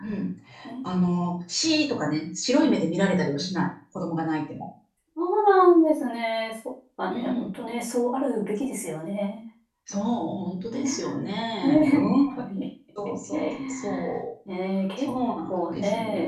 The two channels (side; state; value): both; identical; correlation 1.00